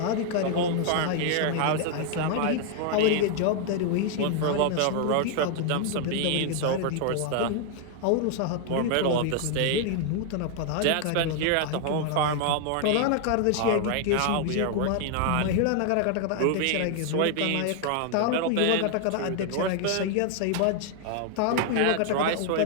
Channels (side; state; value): both; different; correlation 0.00